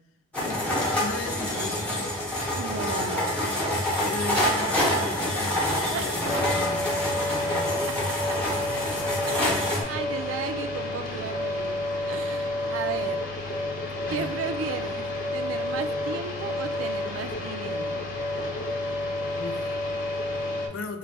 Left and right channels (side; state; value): both; normal; correlation 0.40